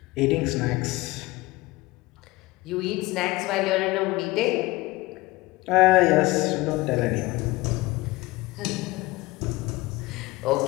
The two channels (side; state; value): right; quieter; 20.7 dB